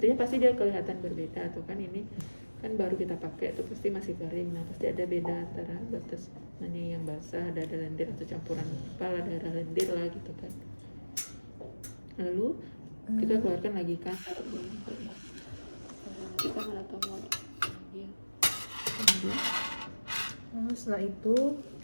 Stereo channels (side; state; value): both; inverted; correlation -1.00